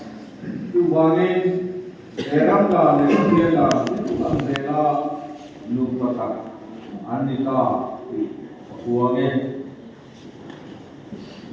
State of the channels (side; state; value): both; identical; correlation 1.00